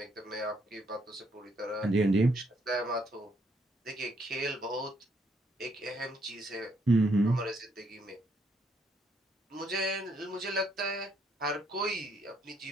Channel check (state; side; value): normal; both; correlation 0.72